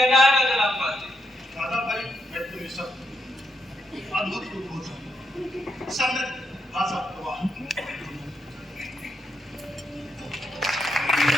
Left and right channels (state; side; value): normal; both; correlation 0.81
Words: है मदन रामपाल जी? दादा भाई, मैं तुम्हें सब अद्भुत रूप हो समृद्ध भाषा प्रवाह।